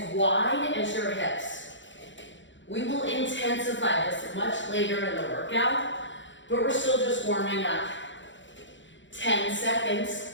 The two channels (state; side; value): late; right; 0.54 ms